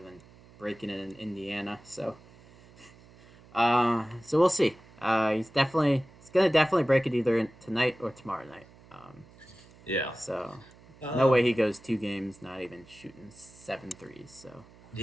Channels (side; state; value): right; noise; hum, 24 dB below the sound